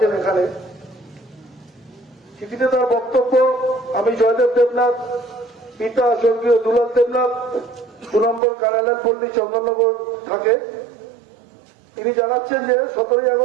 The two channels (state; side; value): drops out; left; at 8.4 s